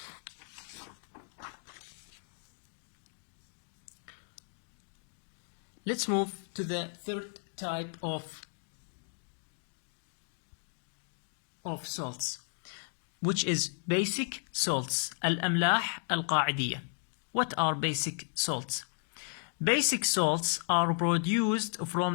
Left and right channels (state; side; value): silent; right; 55 dB below the other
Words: Let's move to the third type of salts, which is basic salts. الأملاح القاعدية. What are basic salts? Basic salts are produced